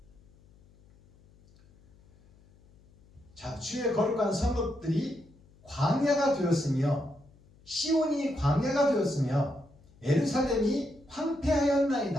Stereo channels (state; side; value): noise; left; hum, 28 dB below the sound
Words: 자, 주의 거룩한 성읍들이 광야가 되었으며 시온이 광야가 되었으며 예루살렘이